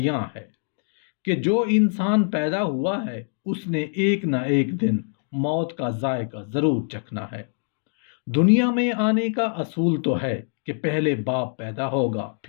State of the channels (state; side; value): silent; right; digital silence